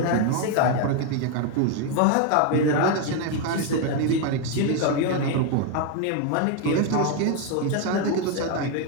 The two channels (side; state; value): both; different; correlation 0.01